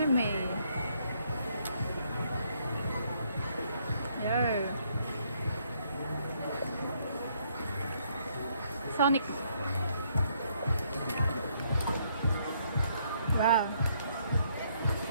Yo. Sonic. Wow.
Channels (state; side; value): inverted; both; correlation -0.70